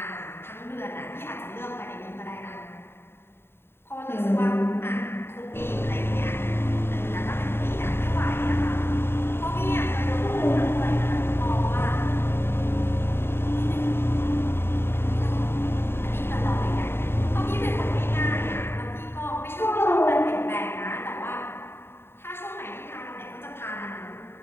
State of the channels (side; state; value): right; late; 0.11 ms